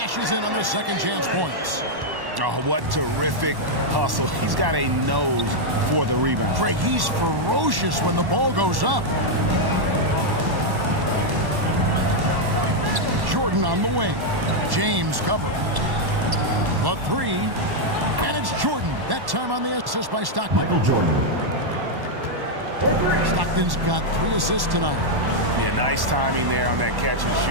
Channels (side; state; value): left; late; 1.1 ms